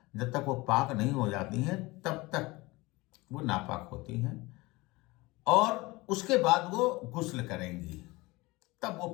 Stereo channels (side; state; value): right; quieter; 22.2 dB